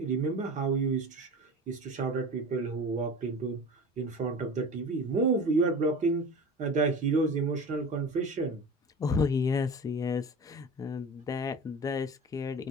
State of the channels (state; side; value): normal; both; correlation 0.34